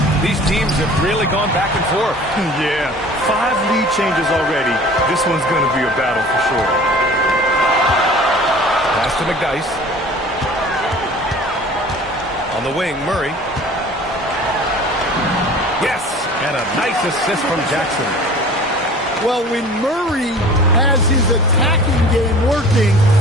These teams have really gone back and forth. Yeah, 5 lead changes already. This one's going to be a battle for sure. Pass to McDyess. On the wing, Murray. Yes, and a nice assist from Jackson. Well, when Murray has his attacking game working,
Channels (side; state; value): both; normal; correlation 0.45